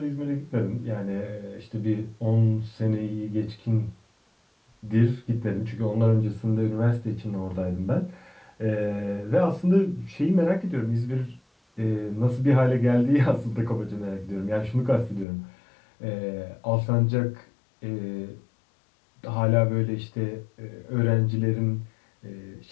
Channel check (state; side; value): drops out; right; at 15.2 s